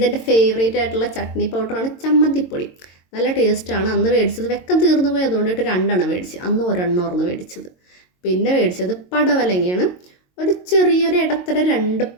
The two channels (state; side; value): late; right; 22 ms